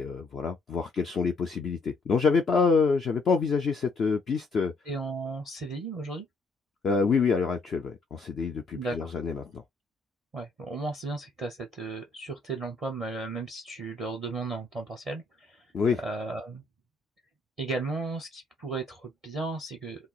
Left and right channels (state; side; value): quieter; right; 3.3 dB